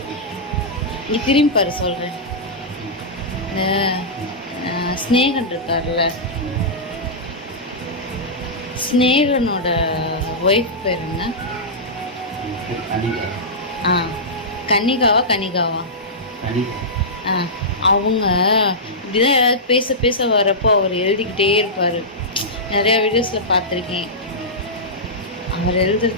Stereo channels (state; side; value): normal; both; correlation -0.13